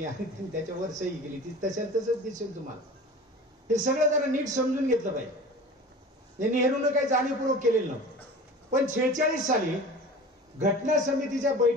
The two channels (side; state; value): both; normal; correlation 0.38